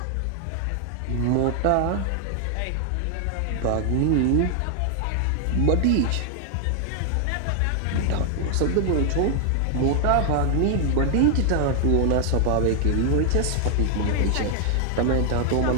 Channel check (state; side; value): different; both; correlation 0.00